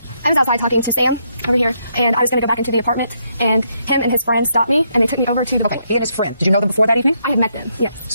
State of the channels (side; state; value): both; inverted; correlation -0.76